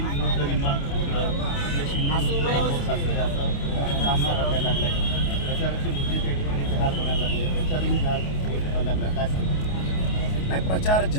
विरुद्ध निंबाळ सामना रंगायला लागलाय. प्रचाराचे मुद्दे त्या ठिकाणी जहाल बनायला लागले, प्रचारही जहाल व्हायला लागला. काय सांगतो? नाही, प्रचार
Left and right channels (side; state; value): right; late; 28 ms